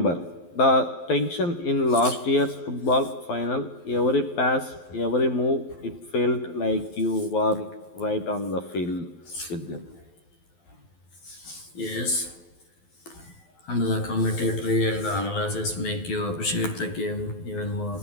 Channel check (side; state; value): right; late; 12 ms